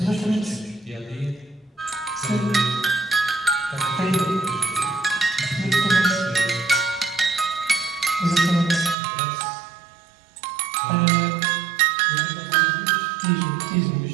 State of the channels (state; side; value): drops out; left; at 9.0 s